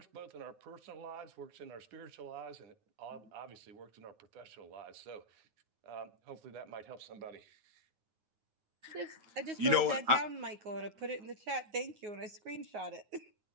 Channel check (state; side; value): late; left; 9.6 ms